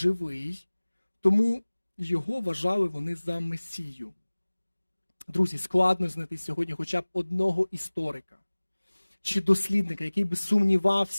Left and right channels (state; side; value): inverted; both; correlation -1.00